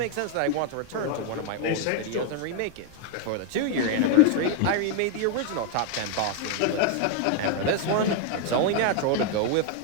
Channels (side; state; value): both; different; correlation 0.00